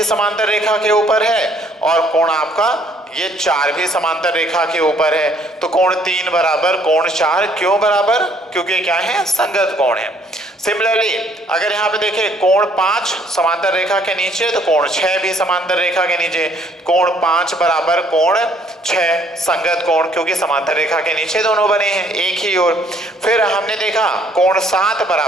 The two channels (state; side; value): normal; both; correlation 0.63